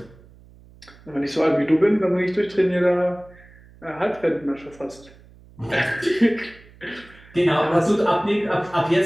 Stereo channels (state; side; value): noise; right; hum, 24 dB below the sound